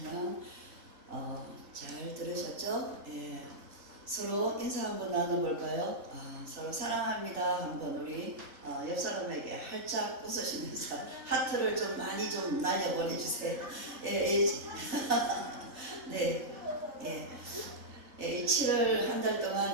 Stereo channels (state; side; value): late; left; 3.3 ms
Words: 잘 들으셨죠? 서로 인사 한번 나눠볼까요? 서로 사랑합니다 한번 우리 옆 사람에게 활짝 웃으시면서 하트를 좀 많이 좀 날려보내주세요. 네, 7월 한 달